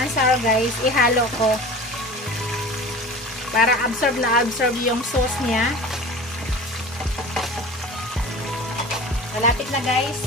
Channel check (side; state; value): both; normal; correlation 0.37